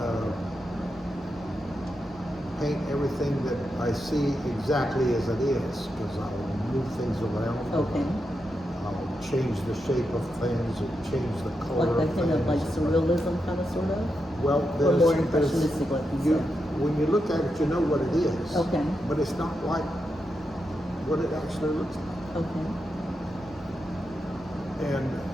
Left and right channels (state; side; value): normal; both; correlation 0.86